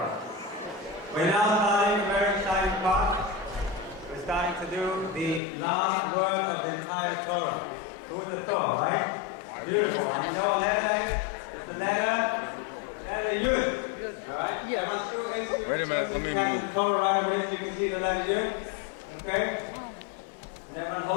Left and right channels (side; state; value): right; drops out; at 5.4 s